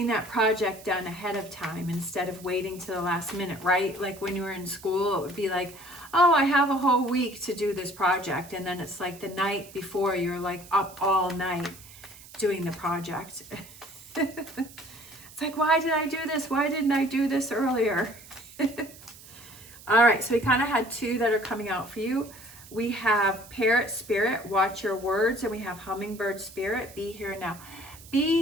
that project done ahead of time instead of waiting to the last minute, right? Like when you were in school, it would be like, oh, I have a whole week to do this project. And then it's like the night before, you're like up all night doing the project. It's like, why did I do this? Why didn't I do this earlier? All right, so we kind of had two that are coming out for you. We have Parrot Spirit, watch your words, and we have Hummingbird Spirit, be here now.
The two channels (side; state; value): right; noise; hiss, 19 dB below the sound